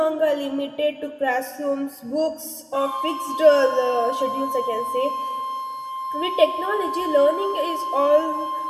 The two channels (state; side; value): identical; both; correlation 1.00